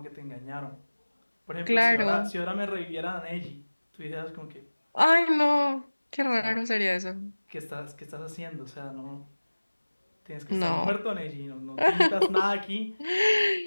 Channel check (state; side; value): inverted; both; correlation -1.00